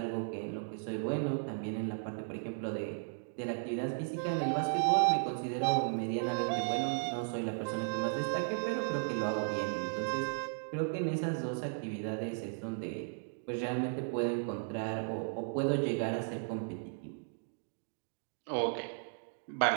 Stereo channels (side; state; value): left; silent; digital silence